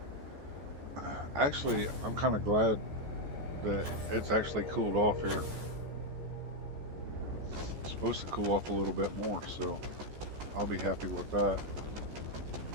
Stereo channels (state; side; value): late; left; 14 ms